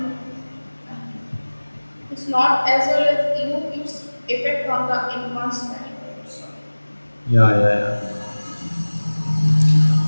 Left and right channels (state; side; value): inverted; both; correlation -1.00